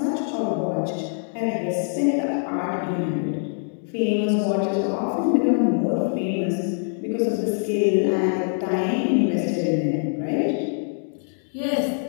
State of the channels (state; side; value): silent; right; digital silence